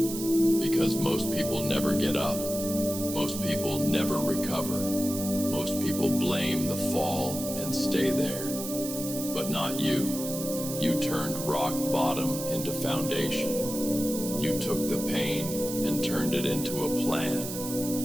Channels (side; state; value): right; noise; hiss, 7 dB below the sound